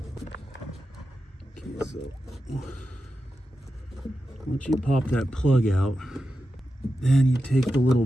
Okay, so once you pop that plug out, then you take the little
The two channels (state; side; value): normal; both; correlation 0.90